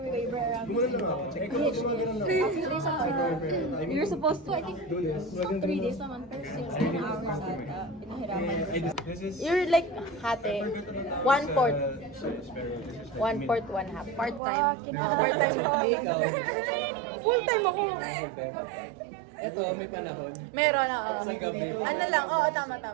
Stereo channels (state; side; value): drops out; left; at 14.4 s